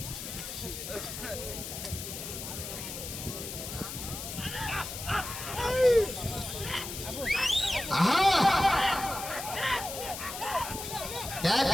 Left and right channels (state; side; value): noise; left; hiss, 7 dB below the sound